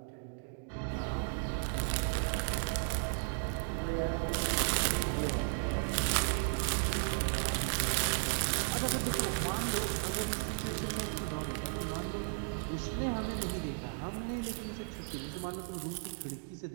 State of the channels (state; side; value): silent; left; 54 dB below the other